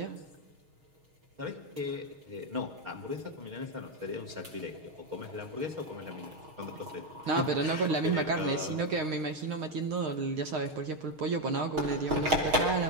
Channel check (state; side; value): late; left; 6.5 ms